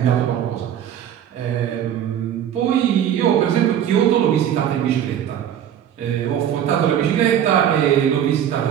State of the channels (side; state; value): left; quieter; 9.9 dB